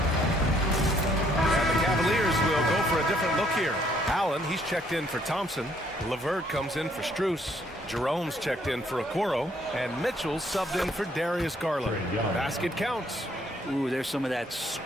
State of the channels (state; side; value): normal; both; correlation 0.67